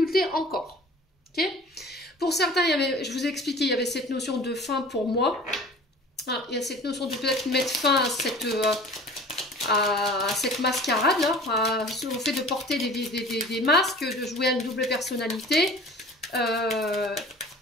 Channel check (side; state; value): both; normal; correlation 0.44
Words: encore. Ok? Pour certains, je vous ai expliqué, il y avait cette notion de fin pour moi. Ah, il y a cette notion de peut-être mettre fin à cette mascarade, là, au fait de porter des masques, de jouer à une double personnalité.